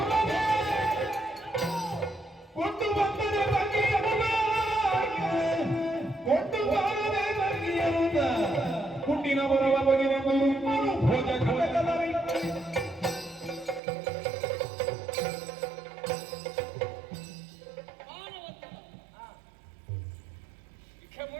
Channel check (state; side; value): drops out; left; at 13.8 s